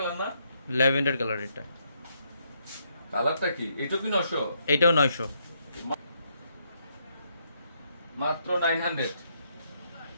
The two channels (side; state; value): both; inverted; correlation -0.74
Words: না? Lavender colour. এটা কালারটা কি? এটা কি 900? এটাও 900। মাত্র 900।